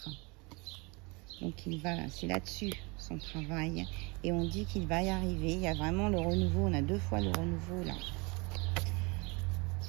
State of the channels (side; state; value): left; quieter; 28.1 dB